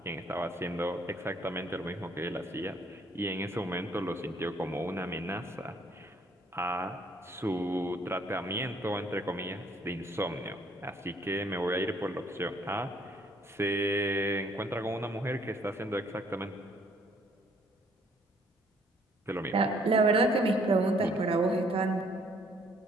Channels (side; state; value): both; normal; correlation 0.63